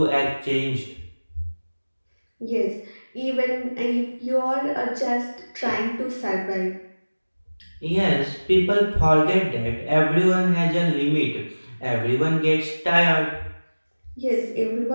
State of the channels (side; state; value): both; inverted; correlation -1.00